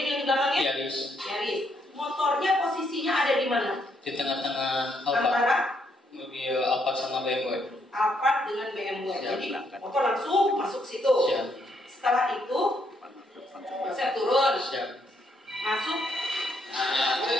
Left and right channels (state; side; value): normal; both; correlation 0.74